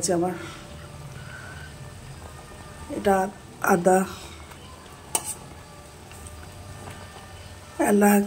আমার। এটা আদা,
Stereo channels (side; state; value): both; identical; correlation 1.00